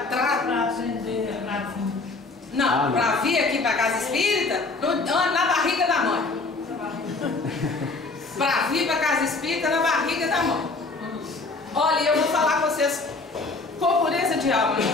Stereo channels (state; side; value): quieter; right; 3.6 dB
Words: Para aprender a vir. Não, para vir aqui para a casa espírita, na barriga da mãe. Para vir para a casa espírita, na barriga da mãe. Olha, eu vou falar com vocês com pureza de alma,